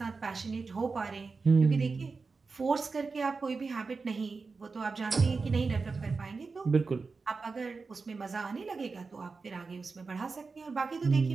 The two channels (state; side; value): quieter; left; 4.4 dB